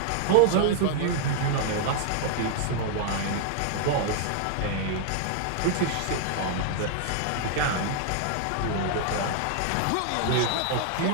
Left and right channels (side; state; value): both; different; correlation 0.00